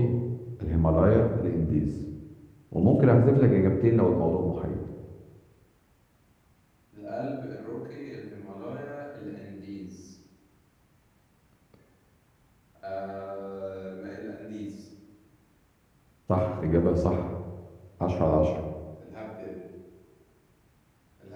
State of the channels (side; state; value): both; identical; correlation 1.00